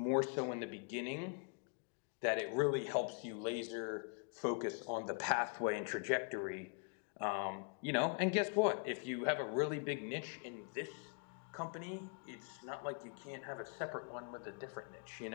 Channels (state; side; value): quieter; right; 39.0 dB